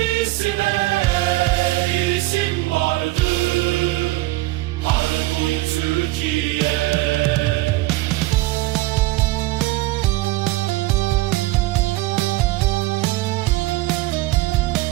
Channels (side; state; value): left; quieter; 18.9 dB